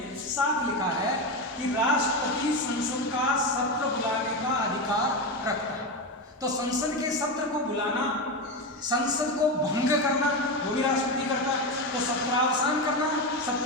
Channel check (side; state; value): both; normal; correlation 0.15